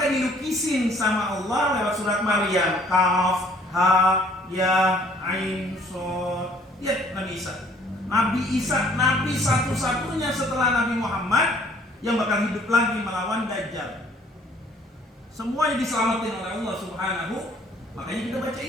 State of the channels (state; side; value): normal; both; correlation 0.58